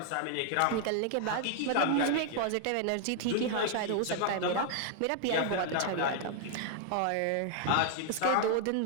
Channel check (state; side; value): different; both; correlation 0.00